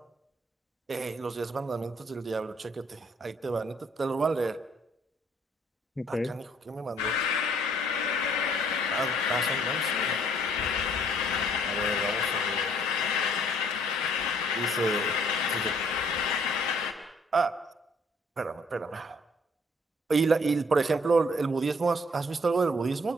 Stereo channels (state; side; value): normal; both; correlation 0.62